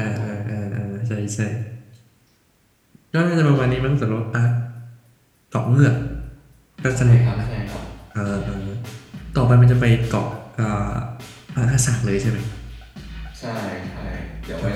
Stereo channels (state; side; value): identical; both; correlation 1.00